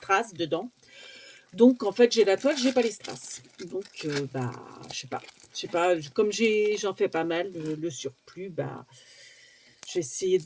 dedans. Donc en fait j'ai la toile, j'ai pas les strass. Donc je sais pas, comme j'en fais pas mal, le surplus, j'ai essayé de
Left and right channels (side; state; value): both; identical; correlation 1.00